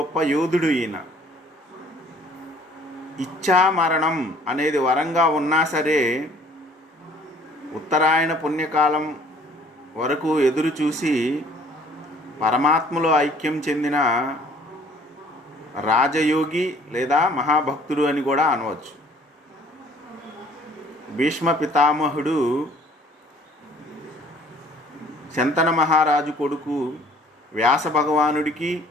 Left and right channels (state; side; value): normal; both; correlation 0.56